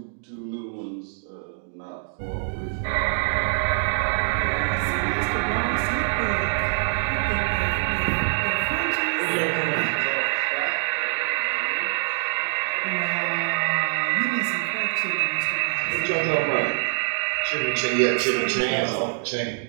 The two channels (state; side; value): silent; left; digital silence